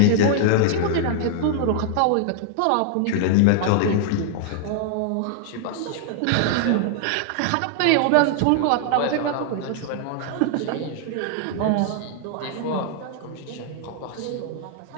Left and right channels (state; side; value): different; both; correlation -0.01